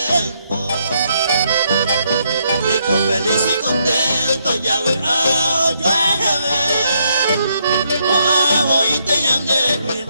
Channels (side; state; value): both; inverted; correlation -0.75